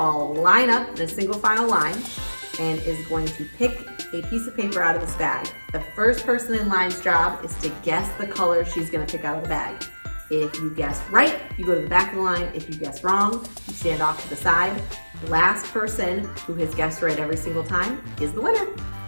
line up in a single file line and is going to pick a piece of paper out of this bag. The first person in line's job is to guess the color she's going to pick out of the bag. If you guess right, you go to the back of the line. If you guess wrong, you stand off to the side. The last person who has guessed right every single time is the winner.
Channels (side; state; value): both; inverted; correlation -1.00